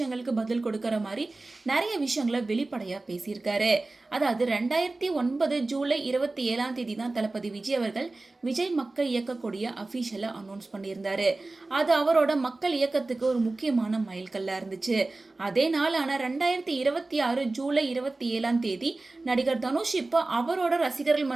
பதில் கொடுக்கற மாதிரி நிறைய விஷயங்களை வெளிப்படையா பேசியிருக்காரு. அதாவது 2009 ஜூலை 27 தான் தளபதி விஜய் அவர்கள் விஜய் மக்கள் இயக்கக்கூடிய அபிஷியலா அனௌன்ஸ் பண்ணியிருந்தாரு. அது அவரோட மக்கள் இயக்கத்துக்கு ஒரு முக்கியமான மைல்கல்லா இருந்துச்சு. அதே நாளான 2026 ஜூலை 27 நடிகர் தனுஷ் இப்போ அவரோட ரசிகர்கள்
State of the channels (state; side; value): quieter; left; 3.2 dB